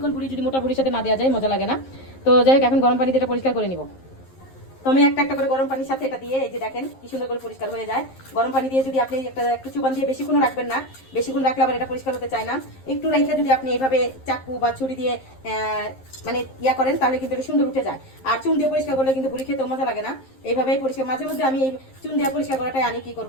বুড়ি যদি মোটা বুড়ির সাথে না দেওয়া যায় মজা লাগে না। তো যাই হোক, এখন গরম পানি দিয়ে এটা পরিষ্কার করে নিব। তো আমি একটা একটা করে গরম পানির সাথে এটা দিয়ে, এই যে দেখেন কি সুন্দর করে পরিষ্কার হয়ে যায়। গরম পানি দিয়ে যদি আপনি একটু চুবান দিয়ে বেশিক্ষণ রাখবেন না, বেশিক্ষণ রাখলে আবার এটা পরিষ্কার হতে চায় না। একটু রেখে যদি আপনি এইভাবে চাকু বা ছুরি দিয়ে মানে ইয়া করেন, তাহলে কিন্তু এটা সুন্দর উঠে যায়। আর চুন দিয়ে পরিষ্কার করলে কিন্তু ভুড়ি খেতেও মজা লাগে না। এইভাবেই পরিষ্কার, মাঝে মধ্যে আমি এই চুন দিয়ে পরিষ্কার করাটাই আনি, কি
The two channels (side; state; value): right; late; 11 ms